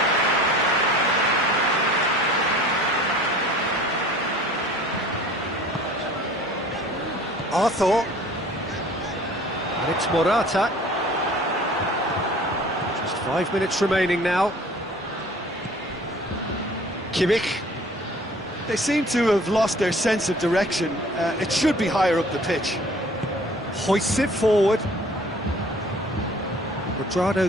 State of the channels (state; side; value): normal; both; correlation 0.49